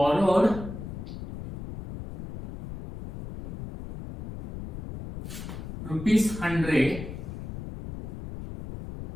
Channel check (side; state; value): left; noise; rumble, 9 dB below the sound